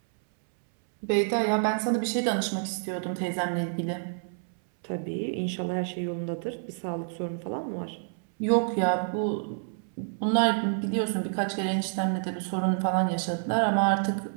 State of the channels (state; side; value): silent; left; 59 dB below the other